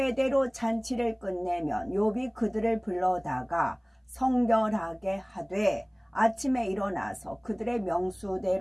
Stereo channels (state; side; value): identical; both; correlation 1.00